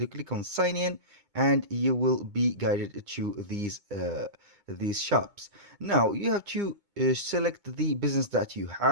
click on sign in and you will be guided to these shops. Now you have to select the business that you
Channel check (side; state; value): left; late; 2.2 ms